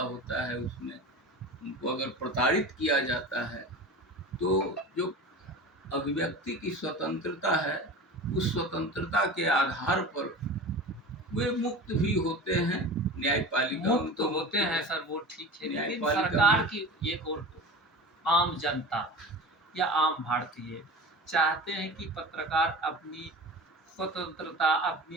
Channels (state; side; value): normal; both; correlation 0.33